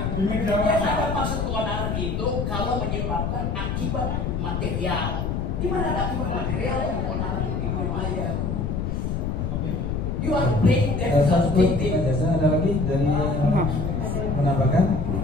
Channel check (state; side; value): noise; left; rumble, 1 dB below the sound